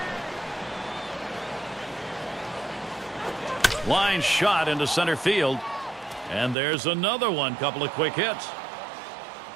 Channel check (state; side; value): drops out; left; at 6.6 s